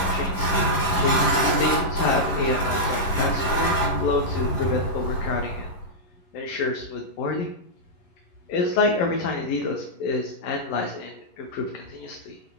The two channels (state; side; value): late; right; 11 ms